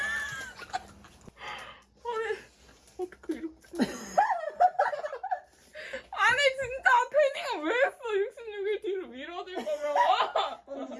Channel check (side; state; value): both; identical; correlation 1.00